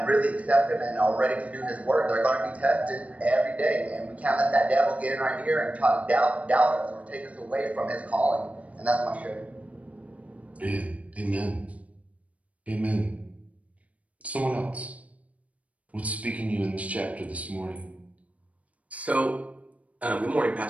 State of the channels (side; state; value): left; late; 0.067 ms